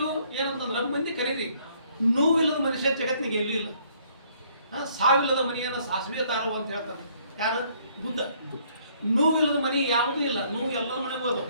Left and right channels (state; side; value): inverted; both; correlation -0.64